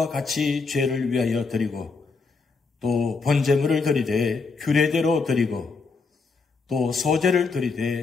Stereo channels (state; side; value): quieter; right; 4.4 dB